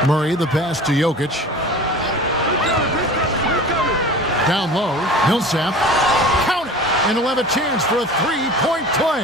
Murray, the pass to Jokic. Down low, Millsap. Count it! And he'll have a chance for a 3-point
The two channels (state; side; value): normal; both; correlation 0.39